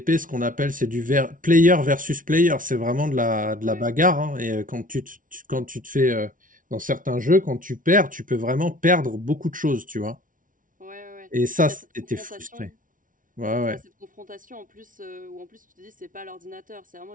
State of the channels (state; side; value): late; left; 0.38 ms